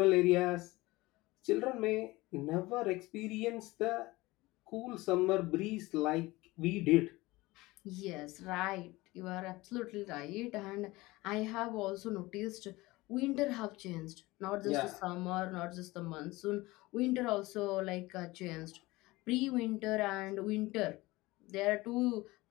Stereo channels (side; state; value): right; quieter; 20.5 dB